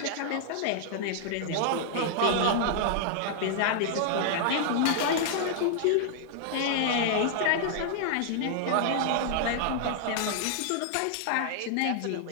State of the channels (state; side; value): different; both; correlation -0.01